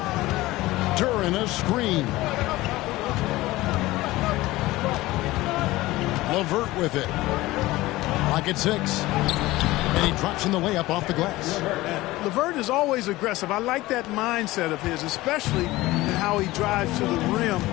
During a screen. LeVert with it. Lock at 6. And he drops in the layup off the glass. LeVert is always aggressive. I like that mindset of his, especially in how he drives to the rim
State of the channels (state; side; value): quieter; right; 18.4 dB